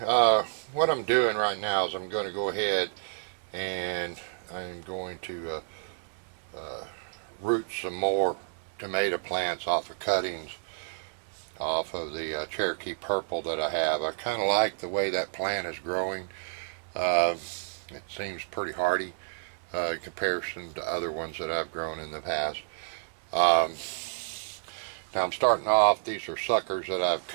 what I'm doing right now is I'm going to go ahead and I'm going to root some more tomato plants off of cuttings off of the Cherokee Purple that I have. I kind of like the way that plant is growing. Uh, it seems pretty hardy in comparison to other ones that I've grown in the past. Um, Now I'm starting off, these are suckers that I've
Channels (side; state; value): left; silent; 58 dB below the other